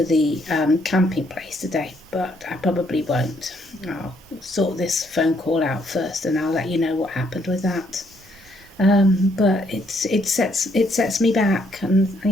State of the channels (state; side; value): normal; both; correlation 0.70